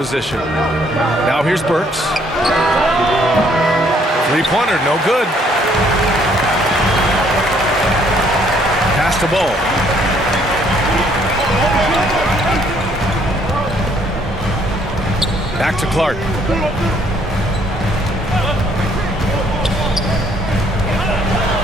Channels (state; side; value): normal; both; correlation 0.65